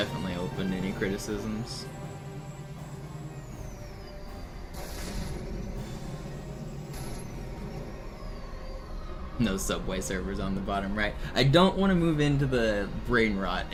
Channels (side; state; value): both; identical; correlation 1.00